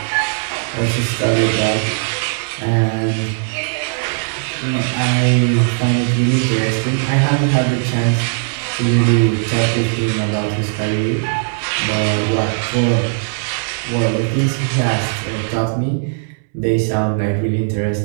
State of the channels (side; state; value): left; silent; 67 dB below the other